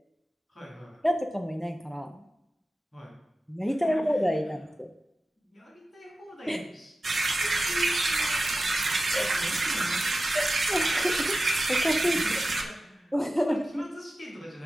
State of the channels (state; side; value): normal; both; correlation 0.94